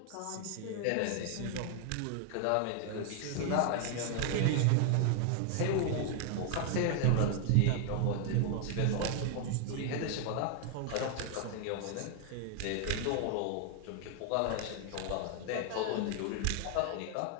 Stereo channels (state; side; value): different; both; correlation 0.00